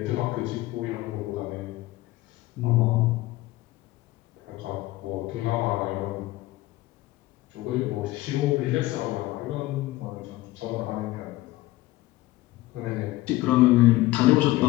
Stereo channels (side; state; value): right; quieter; 17.9 dB